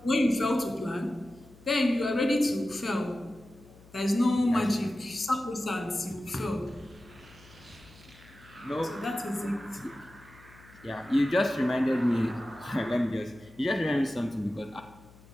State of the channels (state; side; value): noise; left; hum, 24 dB below the sound